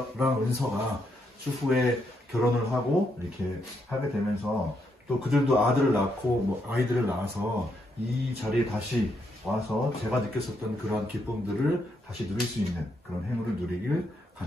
은서가 추후에 결혼을 하고 이렇게 하게 되면서 또 그들도 아들을 낳고 뭐 아이들을 낳아서 이 자리에 다시 와서 제가 느꼈었던 그러한 기쁨들을 다시 누릴 수 있는 그런 행운을 누리길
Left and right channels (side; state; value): both; normal; correlation 0.78